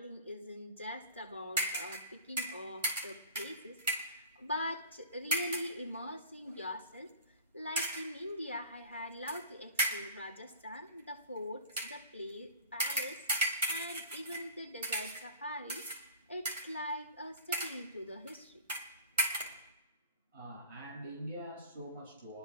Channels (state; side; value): inverted; both; correlation -0.41